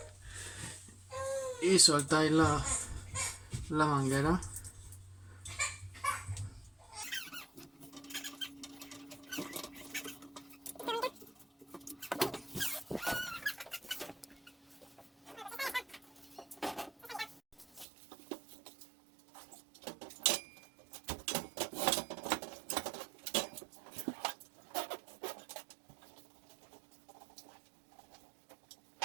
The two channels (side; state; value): left; drops out; at 17.9 s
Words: Y soltáis la manguera.